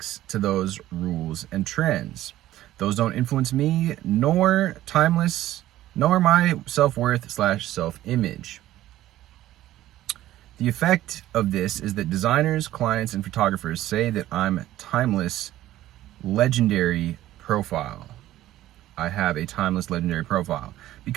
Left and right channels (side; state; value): left; quieter; 14.4 dB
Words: to those rules and trends. Those don't influence me, nor my self-worth / self-image. The effect of this is that designers, clients, and photographers say that I'm timeless, legendary profile. I have a timeless, legendary profile.